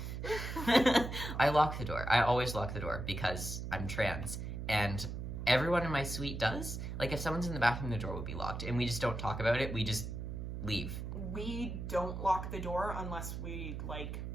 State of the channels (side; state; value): right; noise; hum, 5 dB below the sound